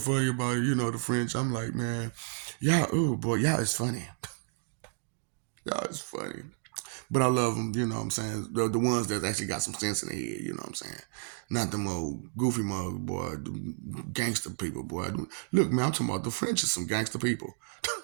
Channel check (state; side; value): silent; left; digital silence